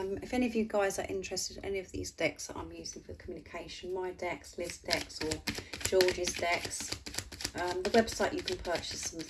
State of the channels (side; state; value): both; identical; correlation 1.00